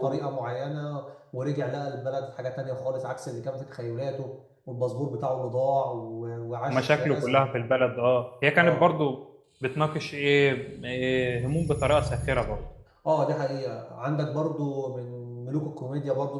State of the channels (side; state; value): both; identical; correlation 1.00